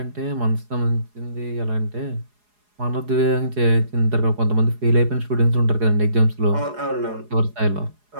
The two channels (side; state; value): left; late; 4.8 ms